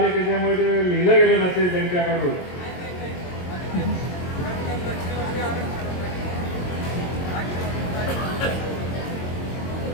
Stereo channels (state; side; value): late; right; 22 ms